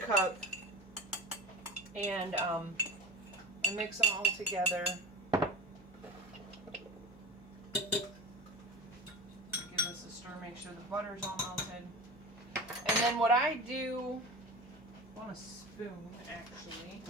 and I mix them all together. Give this a stir, make sure the butter's all melted. And then what I do, I want a spoon actually.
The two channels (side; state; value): both; normal; correlation 0.34